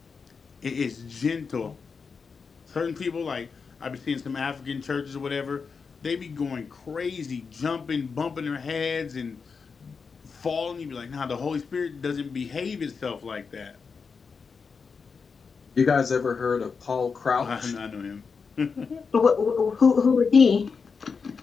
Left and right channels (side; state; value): right; quieter; 5.3 dB